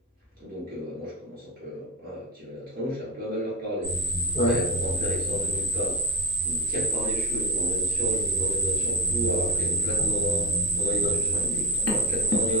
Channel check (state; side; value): normal; both; correlation 0.18